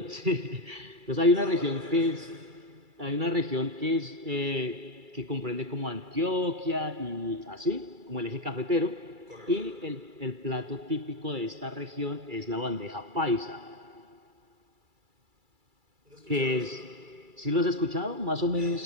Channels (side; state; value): left; late; 2.3 ms